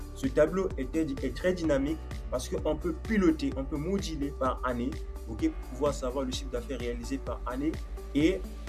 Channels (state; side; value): identical; both; correlation 1.00